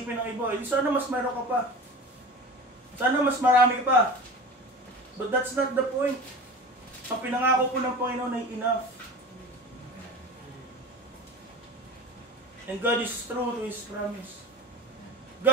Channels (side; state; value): both; normal; correlation 0.34